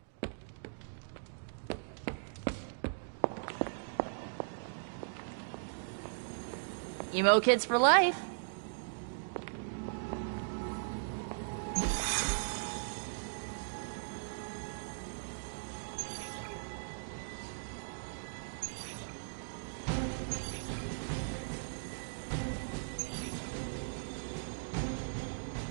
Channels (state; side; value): silent; left; digital silence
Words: Emo kids for life.